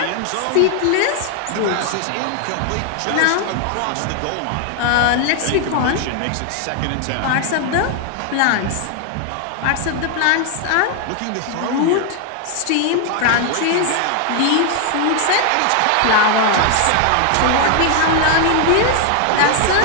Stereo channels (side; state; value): both; different; correlation 0.00